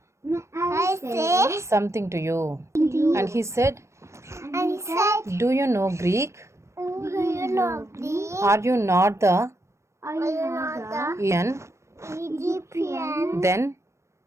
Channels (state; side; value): late; left; 0.14 ms